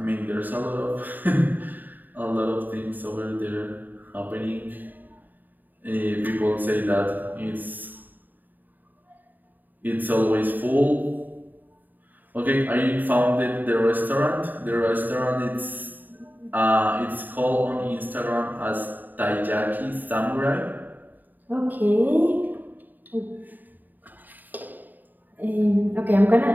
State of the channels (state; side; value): late; left; 0.087 ms